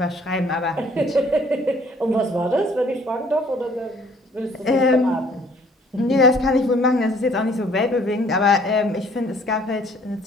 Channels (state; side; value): normal; both; correlation 0.58